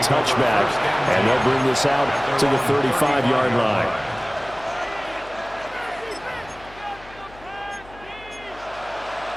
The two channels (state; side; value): noise; left; hum, 21 dB below the sound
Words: touchback, and they'll bring this out to the 35-yard line.